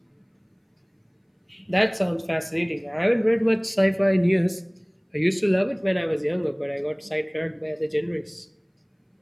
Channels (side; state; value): both; identical; correlation 1.00